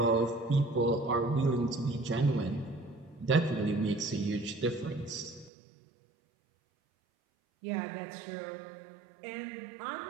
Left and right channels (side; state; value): left; drops out; at 5.5 s